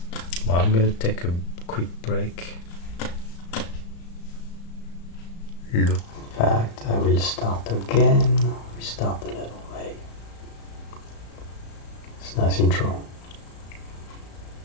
Well, I'm going to take a quick break. Look. In fact, I will start again. Restart the level. Hey. It's a nice intro.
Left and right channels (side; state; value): right; late; 35 ms